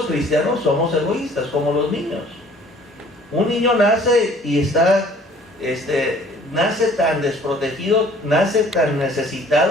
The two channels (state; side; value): normal; both; correlation 0.54